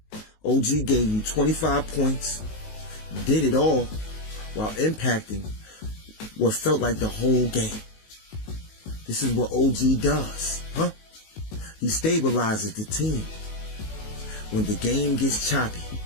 OG gave you 25 points, did it all while impacting what felt like the whole game. This is what OG does, huh? He stabilizes the team. When the game gets choppy,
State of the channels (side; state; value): right; late; 19 ms